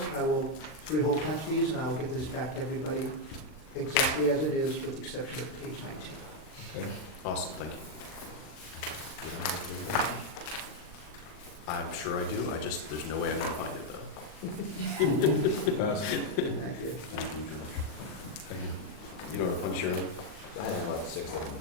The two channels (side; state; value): right; late; 39 ms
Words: I will 3-hole punch these, and I will get this back to everybody exactly as it is, with the exception of page 19. Okay. Awesome, thank you. I'm sure I do, there's no way I'm gonna find it though. Pass it. Thank you. Thank you, George. Thank you. You know how to punch your own? I have about 6 of